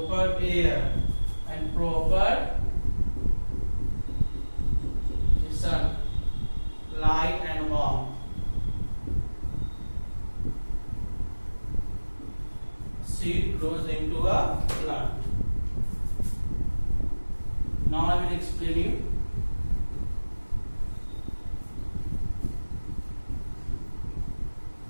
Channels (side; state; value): both; inverted; correlation -1.00